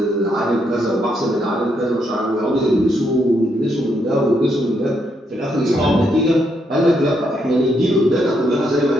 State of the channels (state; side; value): normal; both; correlation 0.77